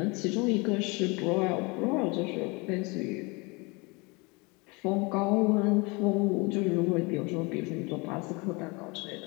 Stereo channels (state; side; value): quieter; right; 27.7 dB